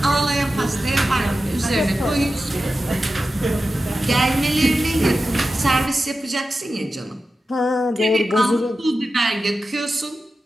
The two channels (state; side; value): normal; both; correlation 0.93